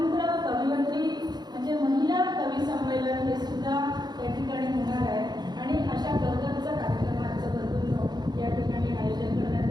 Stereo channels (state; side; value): late; left; 0.20 ms